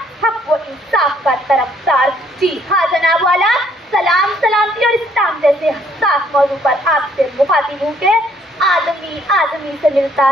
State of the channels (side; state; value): both; normal; correlation 0.65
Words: हक़ व इंसाफ का तरफदार। जी हाँ जनाब वाला, सलाम सलामती और इस्लाम जैसे हसास मौजू पर आपसे मुखातिब हूँ के आदमी से मिलता